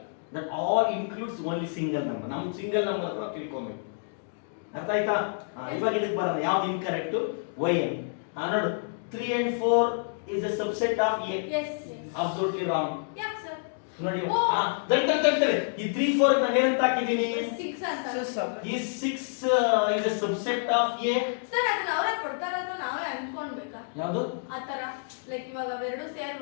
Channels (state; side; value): silent; right; digital silence